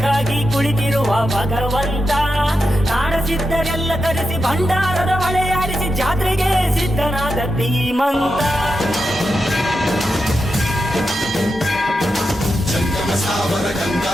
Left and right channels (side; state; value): both; normal; correlation 0.87